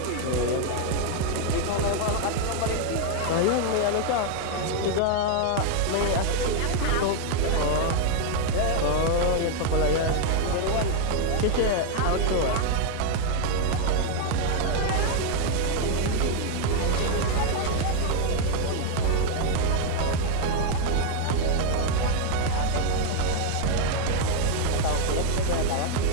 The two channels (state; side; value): different; both; correlation 0.00